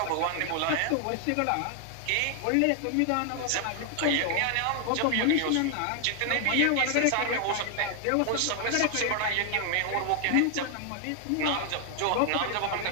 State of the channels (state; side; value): different; both; correlation 0.00